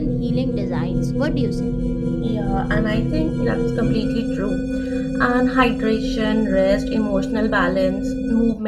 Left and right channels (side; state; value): both; identical; correlation 1.00